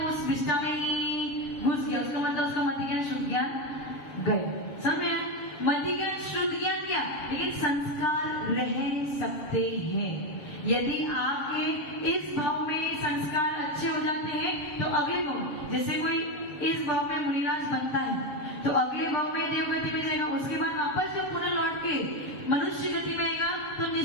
वो उस बिस्टा में ही घुस गया। उसका मतलब उसका मति ज्ञान शुद्ध ज्ञान गए। समझे? मति ज्ञान शुद्ध ज्ञान गया, लेकिन संस्कार रह सकते हैं। यदि आपके इस भाव में संस्कार अच्छे हो जाते हैं तो अगले भाव, जैसे कोई इस भाव में मुनिराज बनता है तो अगले भाव में देवगति में जाएगा, उसके बाद वापस जब पुनः लौट के मनुष्य गति में आएगा तो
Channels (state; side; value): late; right; 7.1 ms